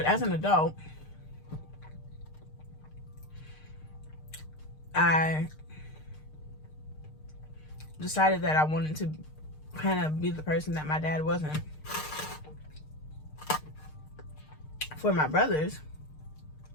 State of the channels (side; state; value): right; late; 6.6 ms